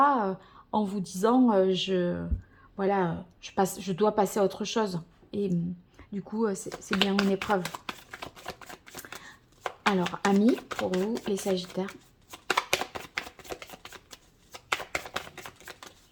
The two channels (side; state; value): both; identical; correlation 1.00